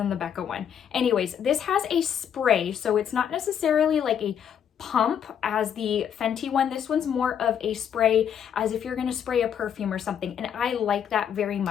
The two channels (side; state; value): right; quieter; 8.6 dB